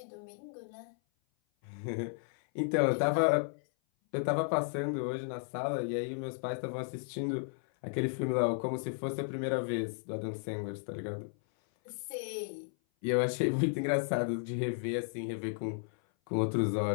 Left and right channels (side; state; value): right; silent; 55 dB below the other